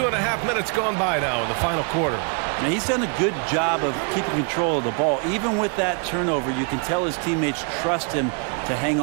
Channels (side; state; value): left; quieter; 38.2 dB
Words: minutes gone by now in the final quarter. Now, he's done a good job of keeping control of the ball. Even with that turnover, you can tell his teammates trust him to hang